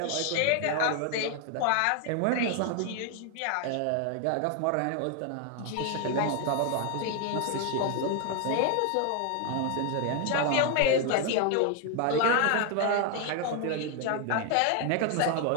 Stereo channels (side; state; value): both; different; correlation 0.01